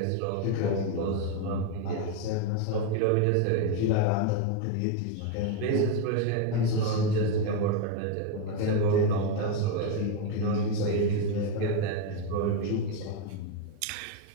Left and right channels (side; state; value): both; different; correlation 0.02